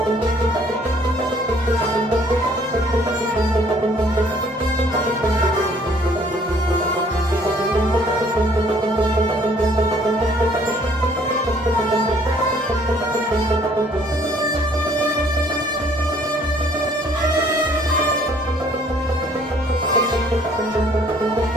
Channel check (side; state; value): both; normal; correlation 0.60